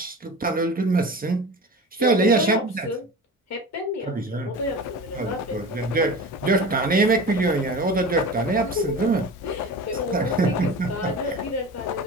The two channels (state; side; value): normal; both; correlation 0.34